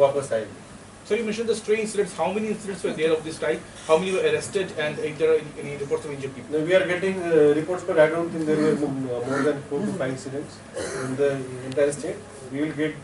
आएंगे। So you mentioned the stray incidents. How many incidents were there of this type? How many were arrested, and if there are any reports of injured people? Now we are getting reports, but I don't think there were more than 4 to 5 incidents in the entire state. We will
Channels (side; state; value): both; identical; correlation 1.00